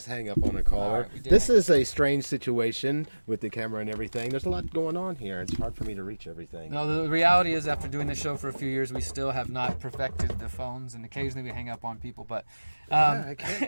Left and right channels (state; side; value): inverted; both; correlation -1.00